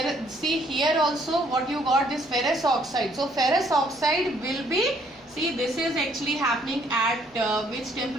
see here also what you got, this ferrous oxide. So ferrous oxide will be, see, this is actually happening at which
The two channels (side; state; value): both; normal; correlation 0.65